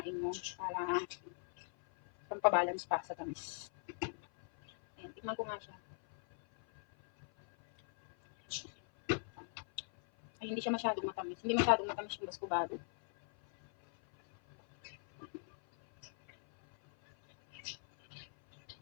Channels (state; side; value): silent; right; 51 dB below the other